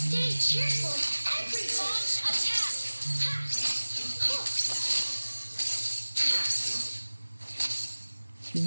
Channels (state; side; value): inverted; both; correlation -1.00